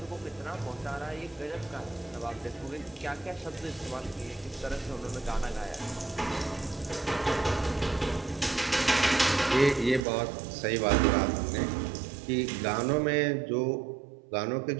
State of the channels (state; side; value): drops out; left; at 10.0 s